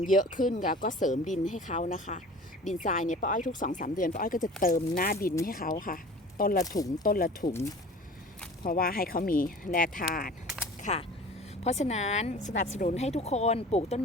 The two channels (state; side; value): normal; both; correlation 0.42